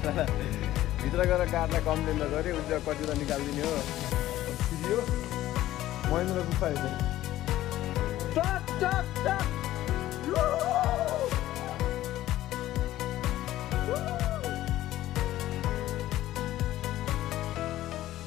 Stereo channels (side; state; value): right; quieter; 14.6 dB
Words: भित्र गएर कार्डलाई कम्प्लेन गरेँ उसले कति त निकालिदिने हो छिरियो महेन्द्र गुफा